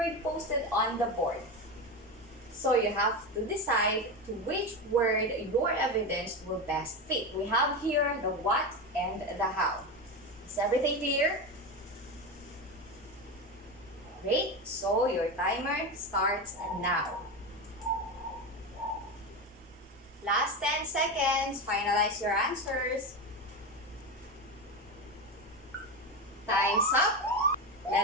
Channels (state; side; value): normal; both; correlation 0.18